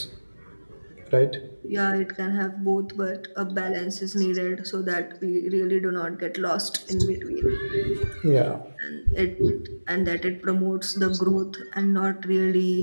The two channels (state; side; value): inverted; both; correlation -1.00